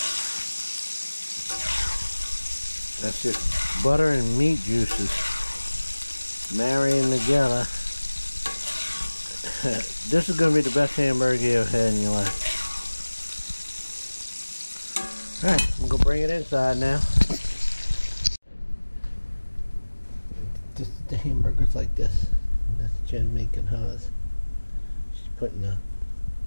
That's just butter and meat juices marrying together. This is going to be the best hamburger you ever had in your life. Alright, I'm going to bring it inside now. The hamburger's like this. That's Jen making hers. She's putting the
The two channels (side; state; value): both; inverted; correlation -1.00